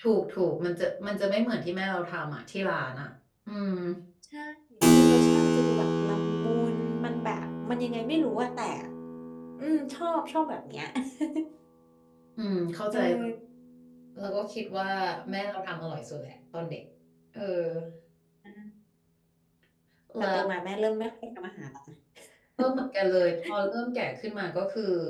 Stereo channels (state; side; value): identical; both; correlation 1.00